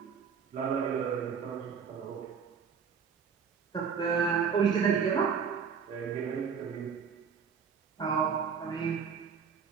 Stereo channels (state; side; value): quieter; left; 6.5 dB